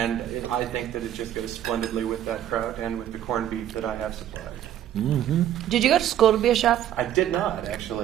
I think that it just goes splendidly with that kraut and with the corned beef that I have supplied. Did you go to school to be a chef? I did not,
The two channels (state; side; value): quieter; left; 11.3 dB